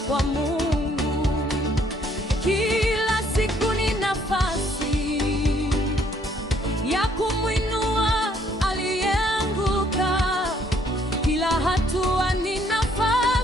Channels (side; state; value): both; normal; correlation 0.65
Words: Mungu. Kila siku ni nafasi ya kumwinua aliyeanguka. Kila hatua ni